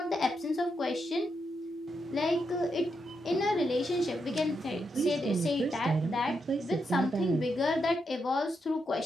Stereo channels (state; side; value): normal; both; correlation 0.83